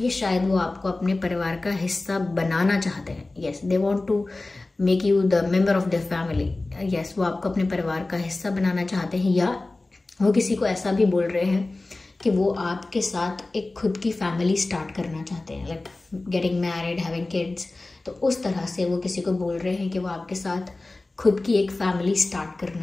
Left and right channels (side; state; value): right; quieter; 3.1 dB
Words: ये शायद वो आपको अपने परिवार का हिस्सा बनाना चाहते हैं। Yes, they want to make you the member of the family. Yes, वो आपको अपने परिवार का हिस्सा बनाना चाहते हैं, या वो किसी को ऐसा भी बोल रहे हैं कि वो आपके साथ एक खुद की फैमिली स्टार्ट करना चाहते हैं, like getting married, having kids. तो उस तरह से वो किसी को बोल रहे हैं कि वो आपके साथ खुद की एक फैमिली स्टार्ट